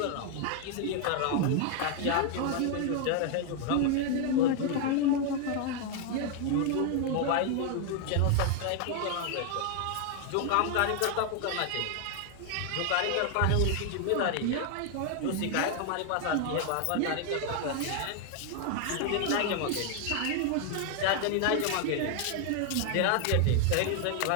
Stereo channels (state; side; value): different; both; correlation 0.00